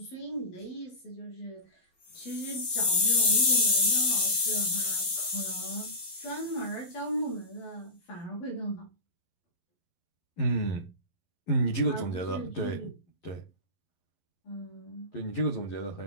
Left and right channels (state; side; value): late; right; 12 ms